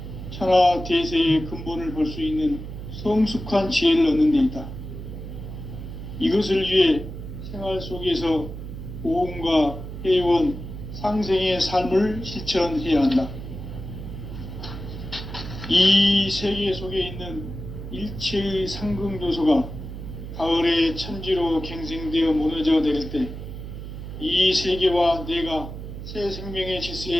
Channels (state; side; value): noise; right; hum, 9 dB below the sound